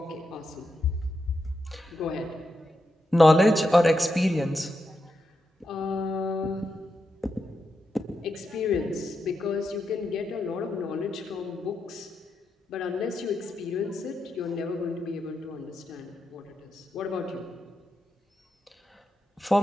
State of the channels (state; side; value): normal; both; correlation 0.85